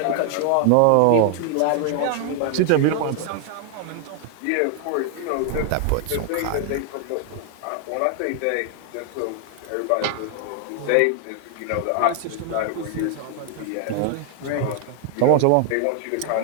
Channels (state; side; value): different; both; correlation 0.00